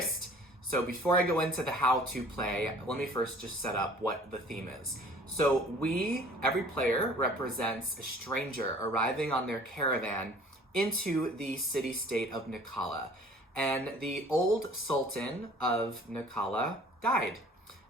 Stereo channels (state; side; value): normal; both; correlation 0.50